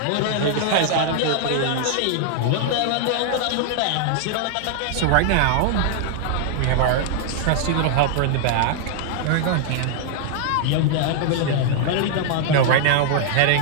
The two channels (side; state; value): both; different; correlation 0.00